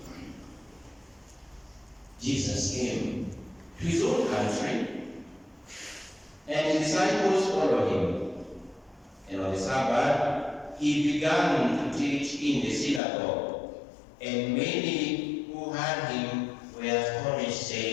Jesus came to his own country, and his disciples followed him. And on the Sabbath, he began to teach in the synagogue, and many who heard him were astonished,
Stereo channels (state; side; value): drops out; right; at 13.0 s